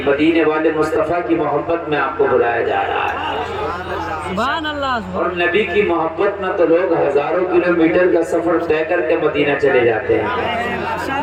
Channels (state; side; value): identical; both; correlation 1.00